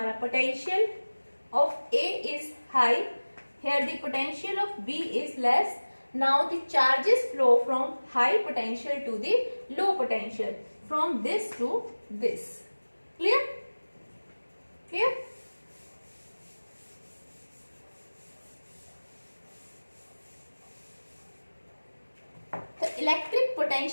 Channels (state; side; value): inverted; both; correlation -1.00